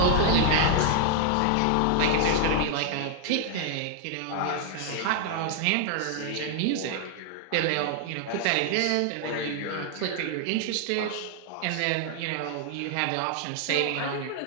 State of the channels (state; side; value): different; both; correlation 0.00